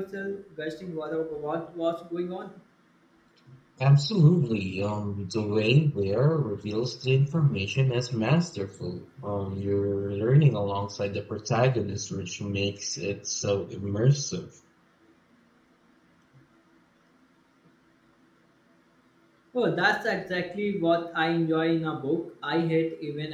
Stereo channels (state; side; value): identical; both; correlation 1.00